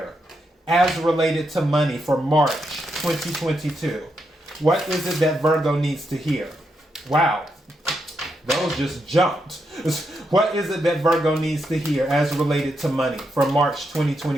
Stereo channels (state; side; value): normal; both; correlation 0.82